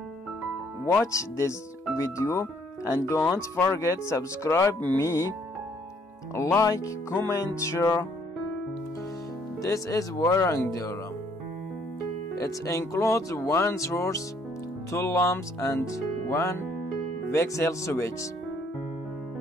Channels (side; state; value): both; normal; correlation 0.65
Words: watch this video and don't forget subscribe me, like, comment, share. This is wiring diagram. It includes one source, two lamps and one voxel switch.